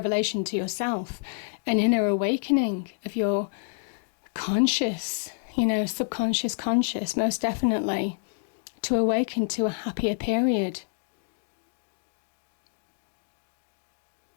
to yourself, an inner awakening of your conscious, subconscious, conscious, most definitely, to awaken to a happier period.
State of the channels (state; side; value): silent; right; digital silence